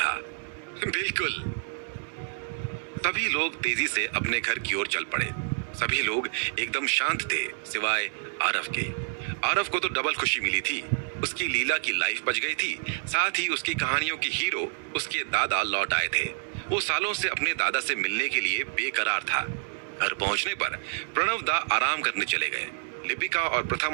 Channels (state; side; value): silent; left; 59 dB below the other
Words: बिल्कुल। सभी लोग तेजी से अपने घर की ओर चल पड़े। सभी लोग एकदम शांत थे सिवाय आरव के। आरव को तो डबल खुशी मिली थी। उसकी लीला की लाइफ बच गई थी, साथ ही उसकी कहानियों की हीरो उसके दादा लौट आए थे। वो सालों से अपने दादा से मिलने के लिए बेकरार था। घर पहुंचने पर प्रणव दा आराम करने चले गए। लिपिका और